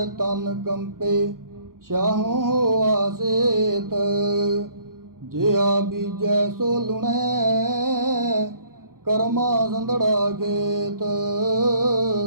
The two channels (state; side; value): late; left; 0.92 ms